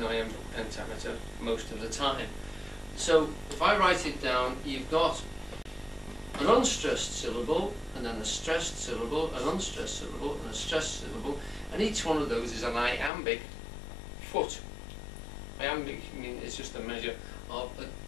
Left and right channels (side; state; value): right; drops out; at 13.1 s